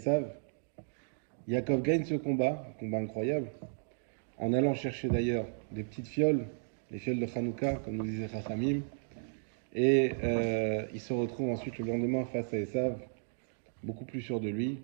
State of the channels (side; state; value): left; silent; digital silence